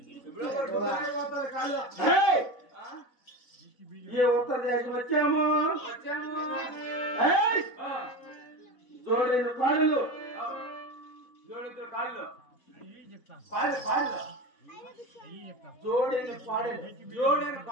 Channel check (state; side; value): late; right; 4.0 ms